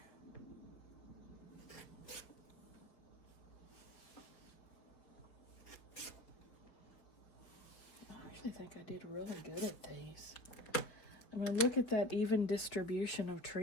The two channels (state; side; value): late; right; 4.6 ms